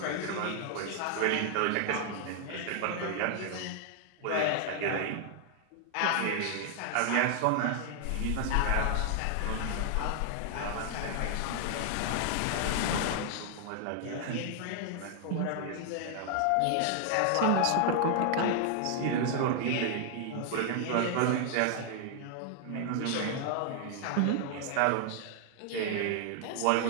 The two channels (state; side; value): different; both; correlation 0.00